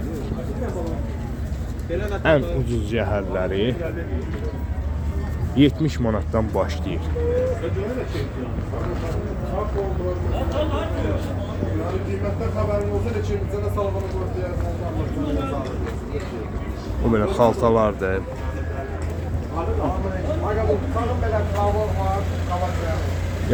Ən ucuz yəhərləri 70 manatdan başlayır. O belə xaltalardır.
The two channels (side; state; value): both; identical; correlation 1.00